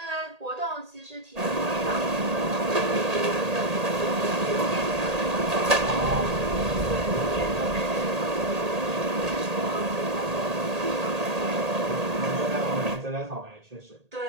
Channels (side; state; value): left; late; 1.8 ms